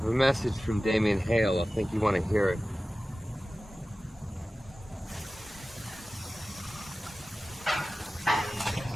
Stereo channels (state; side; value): normal; both; correlation 0.96